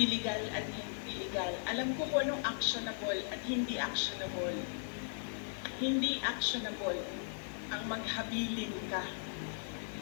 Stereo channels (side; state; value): right; silent; 53 dB below the other